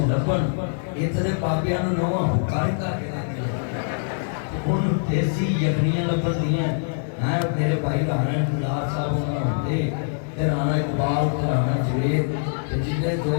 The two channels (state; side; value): silent; right; 62 dB below the other